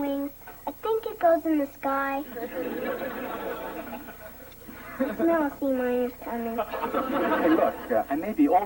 I think it goes in the sky. Smell sea miners coming. Hey, look, I may be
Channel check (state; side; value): identical; both; correlation 1.00